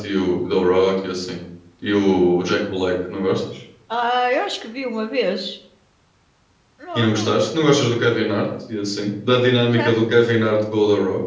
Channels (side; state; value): both; identical; correlation 1.00